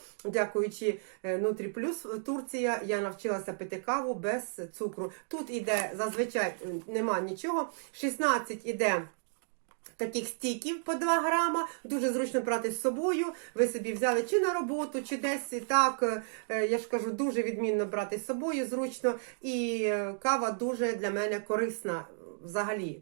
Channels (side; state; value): left; silent; digital silence